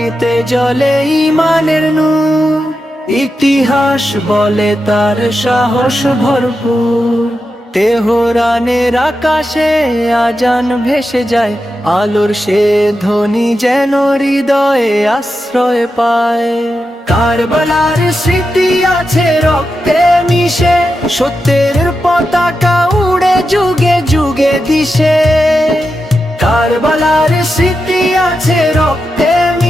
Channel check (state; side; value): normal; both; correlation 0.89